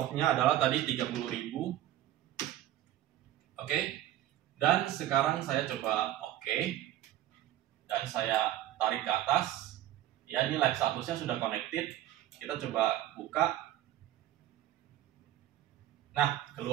adalah tadi 30.000. Oke. Dan sekarang saya coba oke. Dan saya tarik ke atas. Ya, ini live statusnya sudah connected. Kita coba buka. Nah,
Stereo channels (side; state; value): left; quieter; 13.3 dB